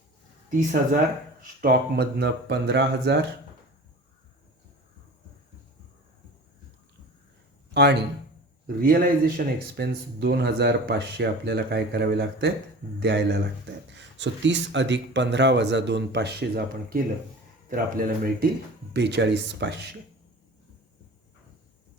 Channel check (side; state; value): both; normal; correlation 0.38